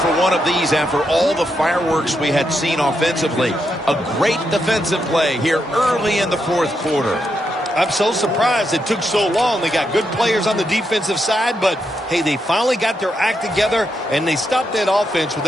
one of these after all the fireworks we had seen offensively. A great defensive play here early in the fourth quarter. I'm so surprised it took so long. They got good players on the defensive side, but, hey, they finally got their act together, and they stopped that offense with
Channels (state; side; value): normal; both; correlation 0.82